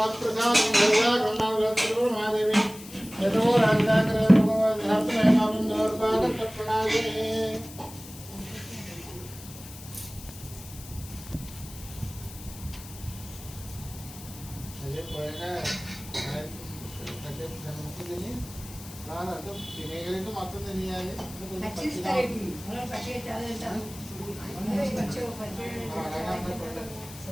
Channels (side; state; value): left; noise; hiss, 16 dB below the sound